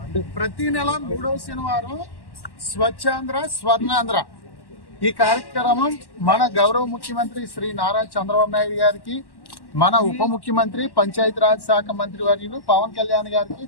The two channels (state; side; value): late; right; 1.1 ms